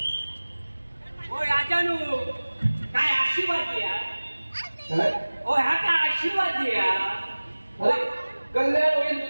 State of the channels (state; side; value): inverted; both; correlation -1.00